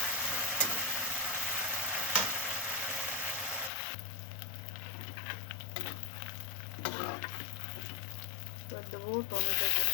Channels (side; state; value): right; drops out; at 3.7 s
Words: এবার দেবো টমেটো